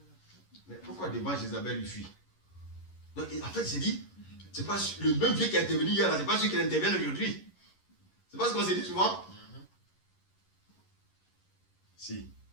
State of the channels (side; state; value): right; late; 11 ms